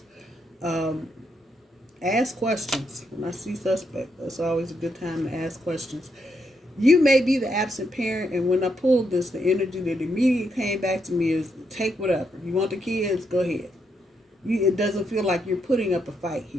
Ask questions. When I see suspect, that's always a good time to ask questions. You may be the absent parent, and when I pulled this, the energy that immediately came back to me is take whatever. You want the kids? Go ahead. It doesn't feel like you're putting up a fight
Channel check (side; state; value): both; normal; correlation 0.79